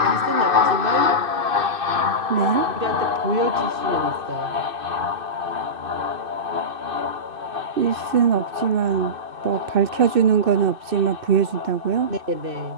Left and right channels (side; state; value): left; late; 2.6 ms